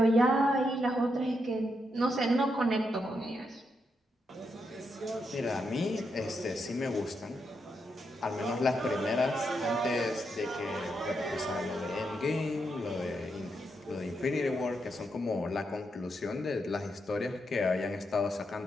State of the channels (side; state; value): both; normal; correlation 0.82